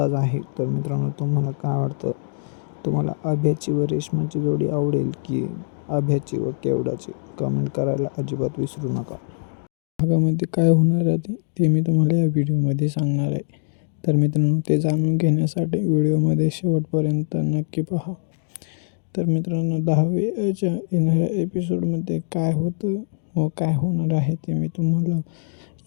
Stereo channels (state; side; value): silent; right; digital silence